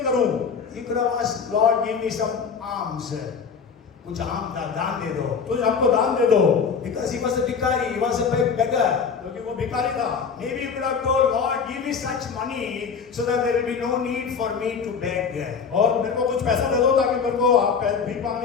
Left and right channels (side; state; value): right; quieter; 6.0 dB